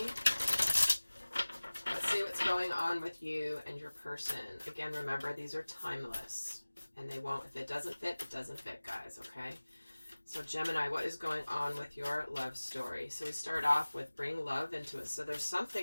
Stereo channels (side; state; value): both; inverted; correlation -1.00